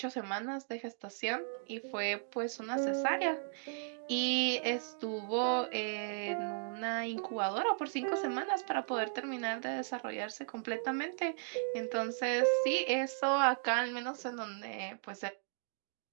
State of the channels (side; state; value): left; silent; digital silence